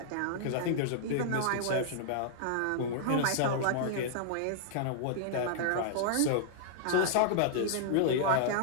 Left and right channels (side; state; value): both; different; correlation -0.01